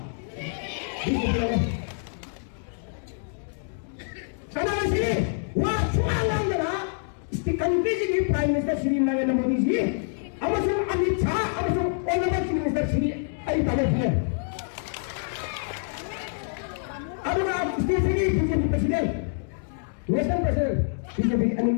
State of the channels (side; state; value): right; silent; digital silence